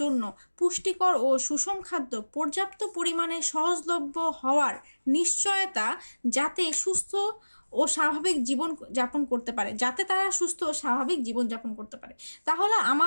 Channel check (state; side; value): inverted; both; correlation -1.00